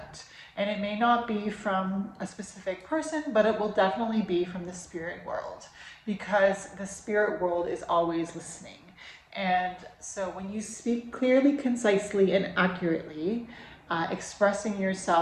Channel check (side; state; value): both; identical; correlation 1.00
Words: And it may not be from a specific person, but it will definitely be from the spirit world, because the spirit world is always listening. And so when you speak clearly, concisely, and accurately, expressing